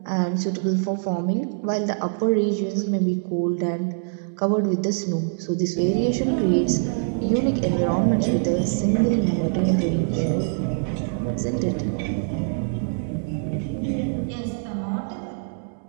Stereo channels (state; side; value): silent; left; 63 dB below the other